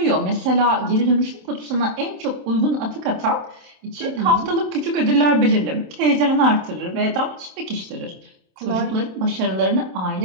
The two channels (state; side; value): late; left; 27 ms